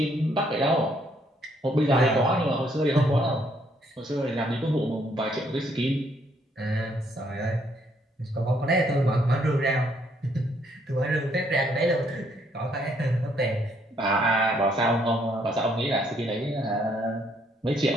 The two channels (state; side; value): normal; both; correlation 0.69